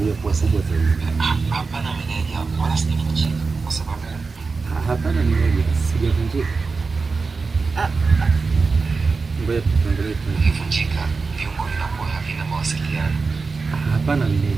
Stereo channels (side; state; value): left; quieter; 4.4 dB